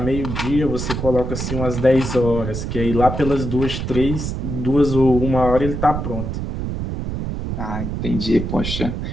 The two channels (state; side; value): noise; right; rumble, 4 dB below the sound